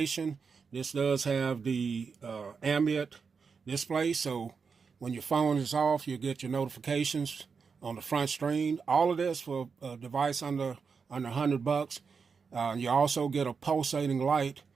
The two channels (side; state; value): left; quieter; 5.5 dB